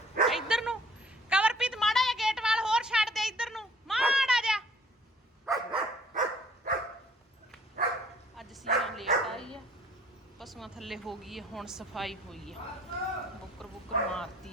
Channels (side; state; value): both; normal; correlation 0.57